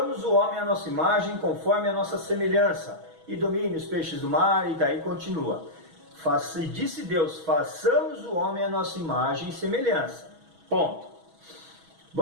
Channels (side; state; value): left; late; 6.2 ms